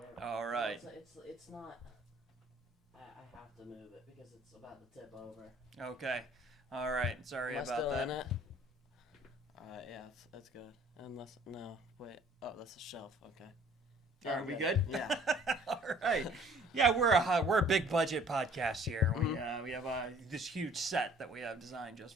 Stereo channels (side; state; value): both; normal; correlation 0.55